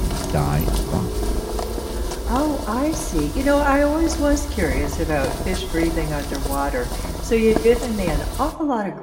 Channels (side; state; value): both; identical; correlation 1.00